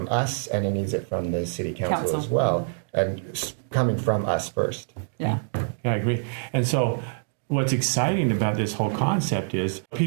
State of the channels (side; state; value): left; silent; digital silence